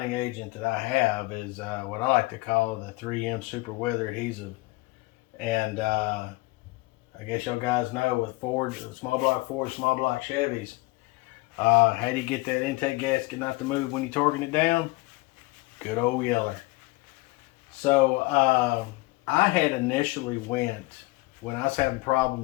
agent that I have is what I like to call the 3M Super Weather Adhesive. And I guess y'all guys know with Ford, small block Ford, small block Chevys, how do you get that intake gasket not to move when you're torquing it down? Good old yeller. So I had initially went, when I was having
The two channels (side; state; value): right; quieter; 22.5 dB